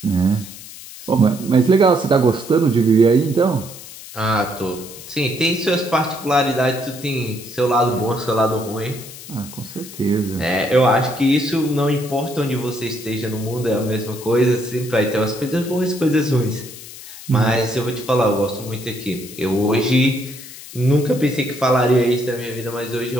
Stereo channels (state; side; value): noise; left; hiss, 15 dB below the sound